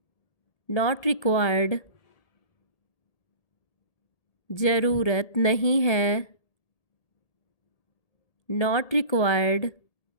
Not required. ज़रूरत नहीं है। नॉट रिक्वायर्ड,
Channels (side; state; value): right; late; 1.7 ms